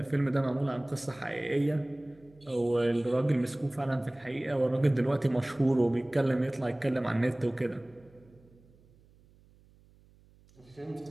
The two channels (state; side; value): noise; right; hum, 28 dB below the sound